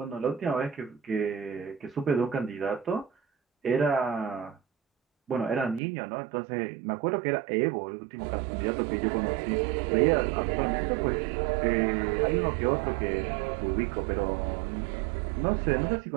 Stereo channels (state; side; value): drops out; left; at 5.8 s